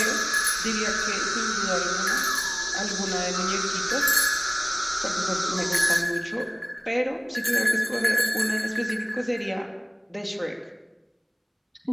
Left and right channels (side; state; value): both; identical; correlation 1.00